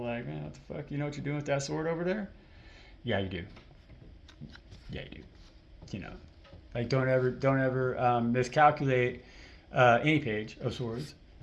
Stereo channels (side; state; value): both; identical; correlation 1.00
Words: like, man, what the fuck, you know what you're doing with that sword over there? Yeah, you do. Yeah, you do. You know. Like don't ever miscalculate any Page of Swords,